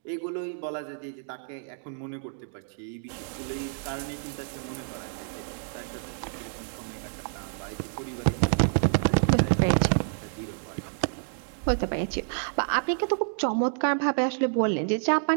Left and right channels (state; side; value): silent; left; digital silence